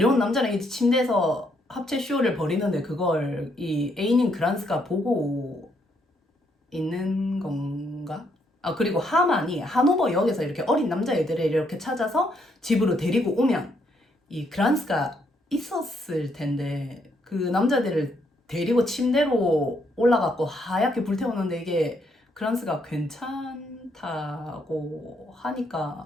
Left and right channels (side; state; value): both; normal; correlation 0.73